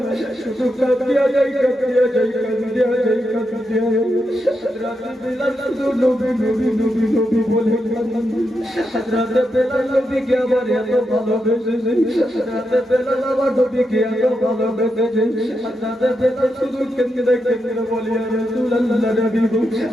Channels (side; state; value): both; normal; correlation 0.85